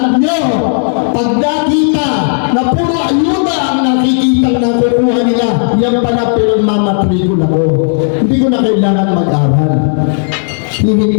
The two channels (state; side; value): silent; right; 63 dB below the other